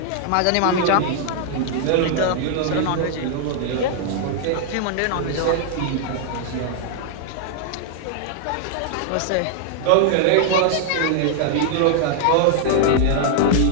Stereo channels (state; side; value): different; both; correlation 0.00